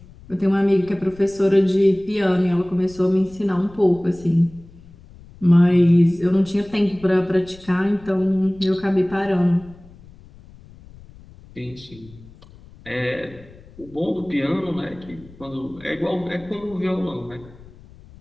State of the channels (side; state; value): left; noise; rumble, 22 dB below the sound